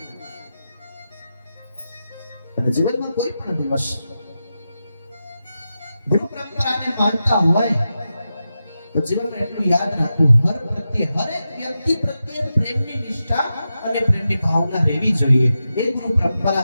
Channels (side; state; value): both; inverted; correlation -0.90